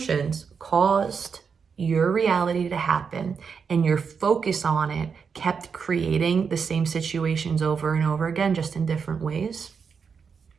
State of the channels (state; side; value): quieter; left; 6.0 dB